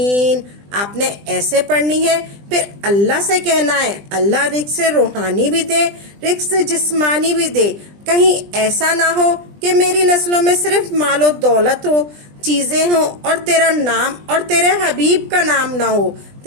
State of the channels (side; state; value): left; late; 20 ms